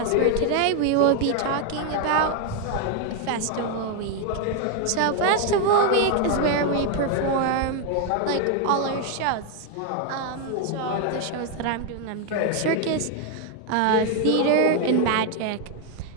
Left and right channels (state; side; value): different; both; correlation 0.01